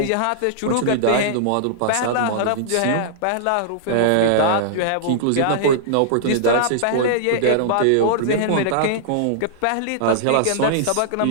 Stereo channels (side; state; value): both; different; correlation -0.02